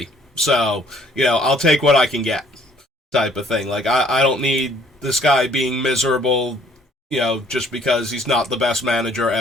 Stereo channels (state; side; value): normal; both; correlation 0.60